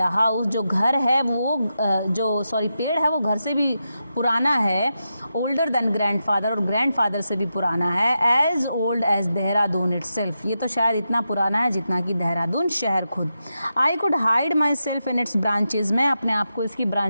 the house. जो घर है वो पेड़ है वो घर से भी पुराना है। Older than grandfather, और grandfather से भी पुराना है। As old as Dehradun itself. ये तो शायद इतना पुराना है जितना कि देहरादून शहर खुद। I could hide myself in its branches. मैं अपने आप को इसकी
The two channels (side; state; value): both; inverted; correlation -0.88